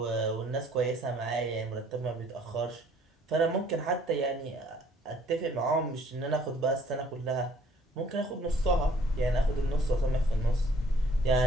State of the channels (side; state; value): both; normal; correlation 0.59